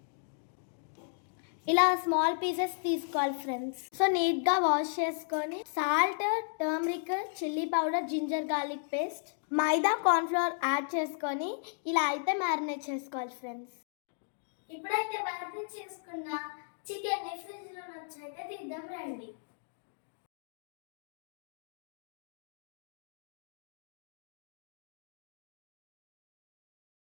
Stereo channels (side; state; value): right; silent; digital silence